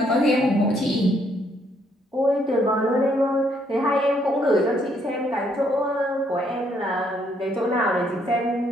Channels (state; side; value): normal; both; correlation 0.70